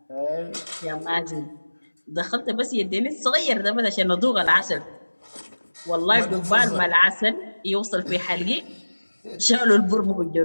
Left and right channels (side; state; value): both; inverted; correlation -1.00